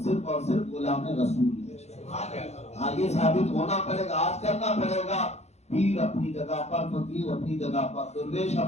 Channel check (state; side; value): late; right; 0.32 ms